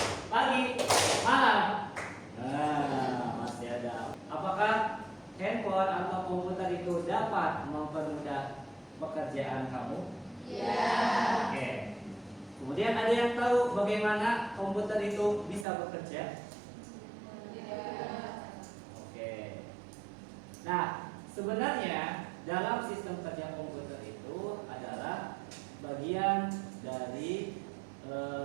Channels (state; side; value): drops out; left; at 15.7 s